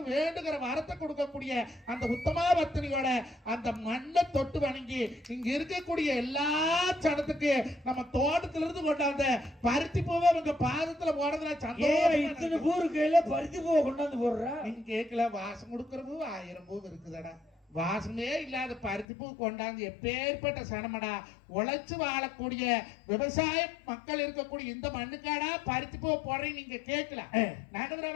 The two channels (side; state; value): right; drops out; at 19.1 s